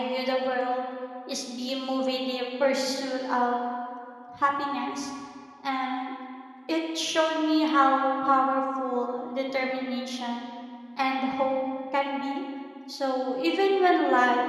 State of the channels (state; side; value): identical; both; correlation 1.00